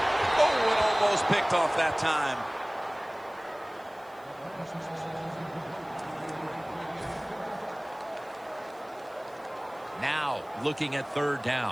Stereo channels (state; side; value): noise; right; hiss, 29 dB below the sound